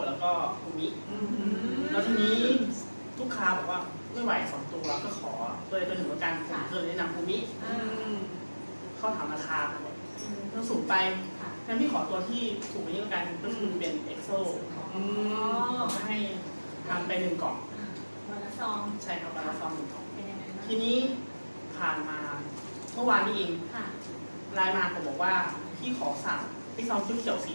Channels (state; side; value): inverted; both; correlation -1.00